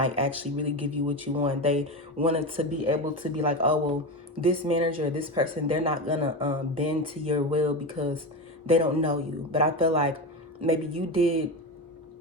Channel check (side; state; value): both; normal; correlation 0.20